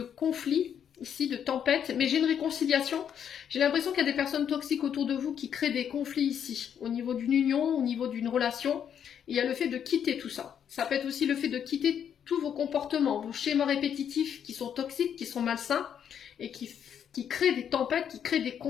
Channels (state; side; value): quieter; right; 8.6 dB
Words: conflits ici, de tempêtes, mais j'ai une réconciliation. J'ai l'impression qu'il y a des personnes toxiques autour de vous qui créent des conflits ici, au niveau d'une union, au niveau d'une relation. Et il y a le fait de quitter tout ça. Ça peut être aussi le fait de quitter tous vos comportements, vos schémas répétitifs qui sont toxiques, qui sont malsains, et qui créent des tempêtes, qui créent des